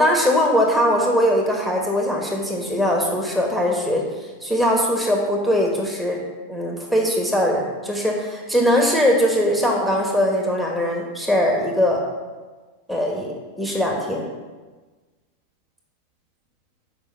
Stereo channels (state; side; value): normal; both; correlation 0.53